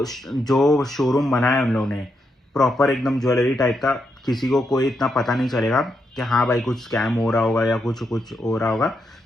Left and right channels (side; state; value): both; normal; correlation 0.81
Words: जो शोरूम बनाया उन लोगों ने प्रॉपर एकदम ज्वेलरी टाइप का, किसी को कोई इतना पता नहीं चलेगा कि हाँ भाई कुछ स्कैम हो रहा होगा या कुछ हो रहा होगा,